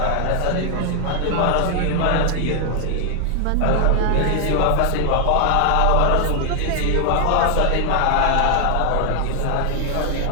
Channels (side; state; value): both; different; correlation 0.00